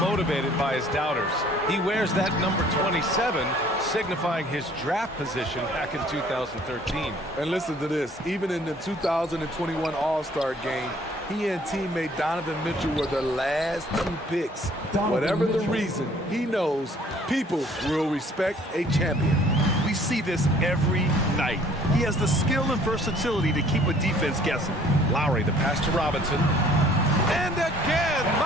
by his doubters. He wears that number 27, signifying his draft position back in 2013. And listen to this. Even in the 2021 All-Star game, he and teammate Donovan Mitchell were the last 2 picks. Whatever the reason, he knows people will respect a champion. We see this every night. He has the skill and versatility to keep a defense guessing. Lowry, the pass to Robinson. And again,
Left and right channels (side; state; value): both; normal; correlation 0.56